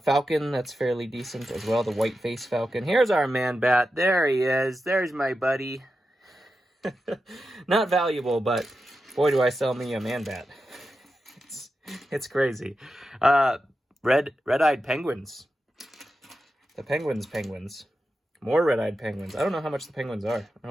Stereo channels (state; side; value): normal; both; correlation 0.90